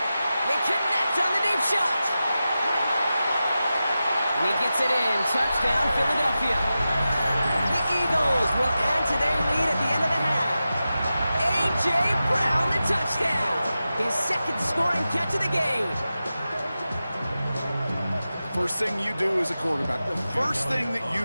They connect on the deep shot. And he gets it in. Touchdown, Philadelphia. The Eagles will add to their lead at the end of the half. A.J. Brown, the touchdown. His 2nd scoring catch of the game. First thing you do as a quarterback, the first thing that you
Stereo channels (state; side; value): inverted; both; correlation -0.93